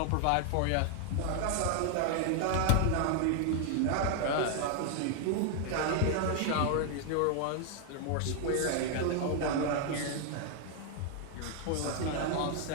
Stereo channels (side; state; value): both; different; correlation 0.00